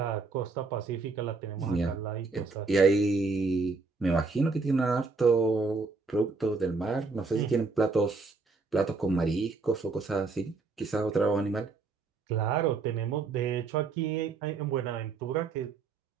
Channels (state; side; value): quieter; left; 4.2 dB